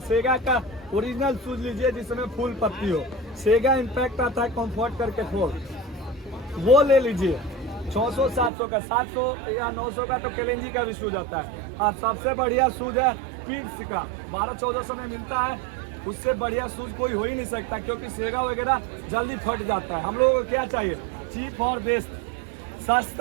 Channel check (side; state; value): left; drops out; at 8.5 s